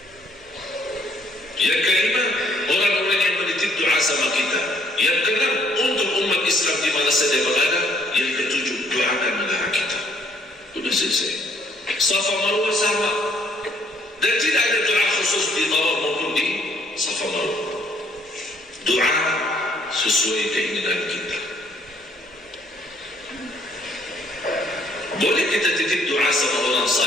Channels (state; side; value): normal; both; correlation 0.65